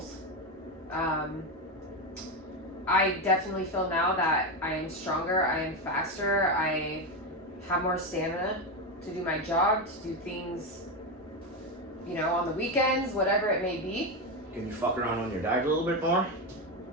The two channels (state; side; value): normal; both; correlation 0.13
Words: I definitely feel now that I am stronger, I am faster, I have more stamina to do my job, to do things, on the weekends, whatever it may be. Can you fuck around on your diet a little bit more?